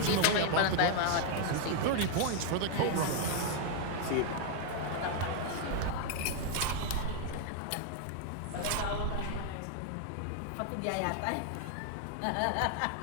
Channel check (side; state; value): both; different; correlation 0.00